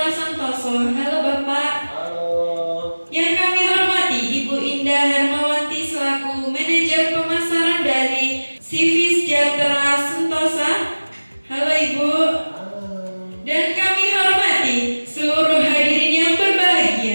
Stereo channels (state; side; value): inverted; both; correlation -1.00